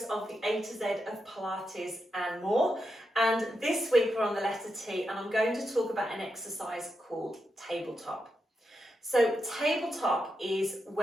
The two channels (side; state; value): both; normal; correlation 0.85